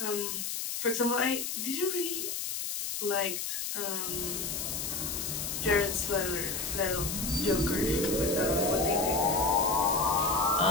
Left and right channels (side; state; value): left; noise; hiss, 3 dB below the sound